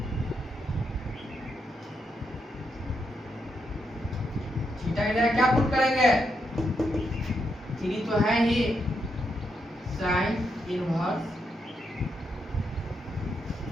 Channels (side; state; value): both; normal; correlation 0.81